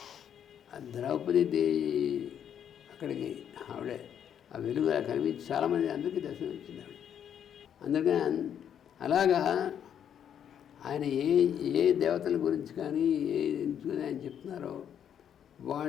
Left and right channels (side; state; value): right; quieter; 9.0 dB